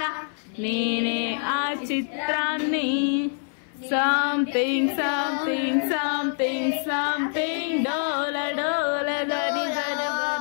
నేనే ఆ చిత్రాన్ని. సంథింగ్ సంథింగ్ సంథింగ్ సంథింగ్ డోల డోల దరి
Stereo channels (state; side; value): silent; right; 62 dB below the other